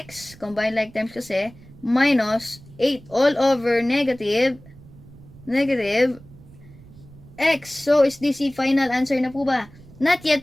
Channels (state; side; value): noise; right; rumble, 21 dB below the sound